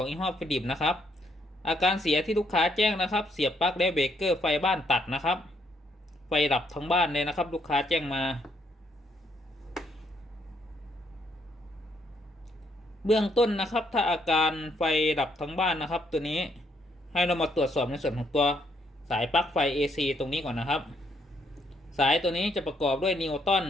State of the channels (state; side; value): normal; both; correlation 0.72